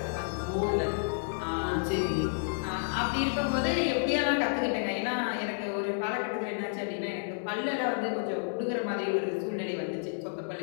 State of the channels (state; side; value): silent; right; 57 dB below the other